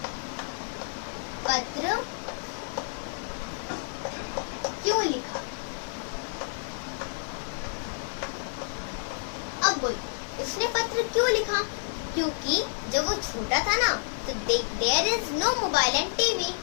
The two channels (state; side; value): silent; right; 58 dB below the other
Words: पत्र क्यों लिखा। अब बोल, उसने पत्र क्यों लिखा? क्योंकि जब वो छोटा था ना, तो there is no mobile and TV,